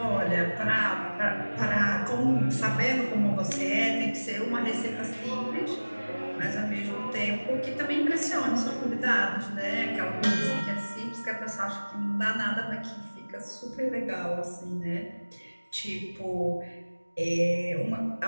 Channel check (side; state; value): both; inverted; correlation -1.00